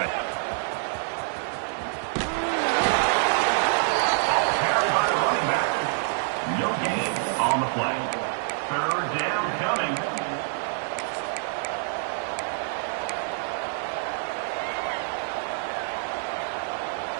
it. On the play. Third down coming.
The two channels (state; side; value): silent; left; 60 dB below the other